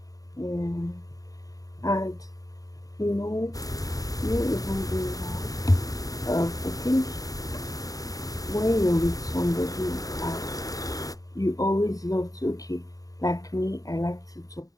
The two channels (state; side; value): late; right; 0.17 ms